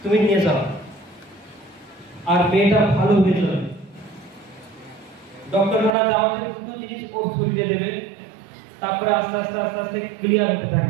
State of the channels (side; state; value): left; drops out; at 5.9 s